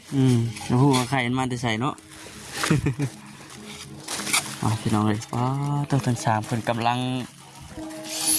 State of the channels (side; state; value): both; identical; correlation 1.00